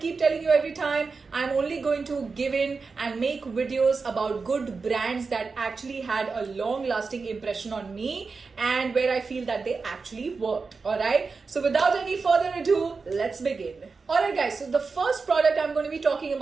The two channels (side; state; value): left; quieter; 4.6 dB